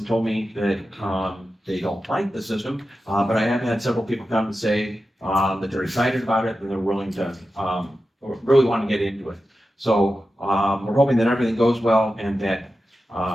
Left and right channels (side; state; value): both; normal; correlation 0.92